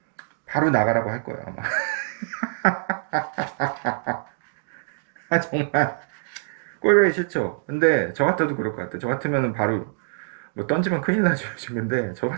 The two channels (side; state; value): left; silent; digital silence